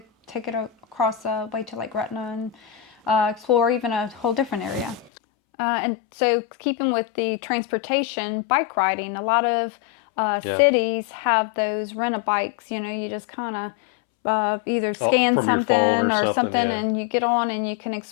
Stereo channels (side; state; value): right; drops out; at 5.1 s